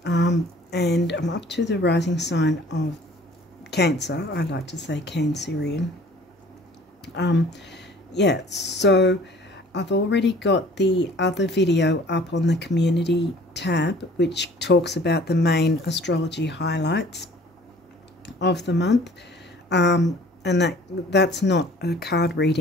and I'm up to the rising sign of Cancer. I like to say Cancerian. Yeah, so I've already got the other video up on the community tab, which talks about the main astrology highlights of the month. And that's not a card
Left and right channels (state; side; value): normal; both; correlation 0.51